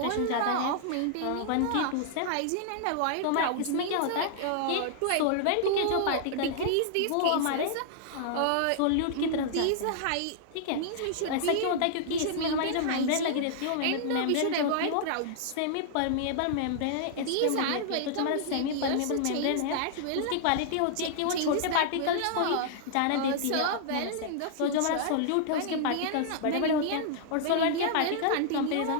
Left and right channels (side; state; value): both; different; correlation -0.01